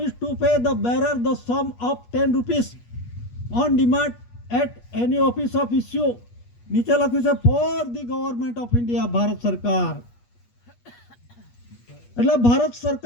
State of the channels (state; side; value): late; right; 8.4 ms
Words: to pay the bearer the sum of 10 rupees on demand at any office of issue. નીચે લખ્યું છે for the government of India, Bharat સરકાર. એટલે ભારત